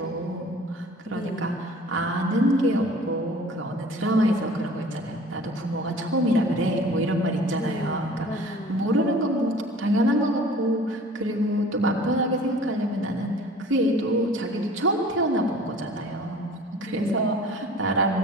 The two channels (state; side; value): normal; both; correlation 0.47